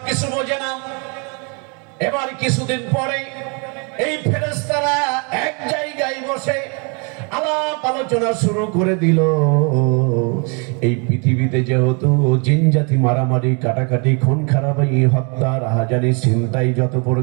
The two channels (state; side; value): quieter; left; 34.6 dB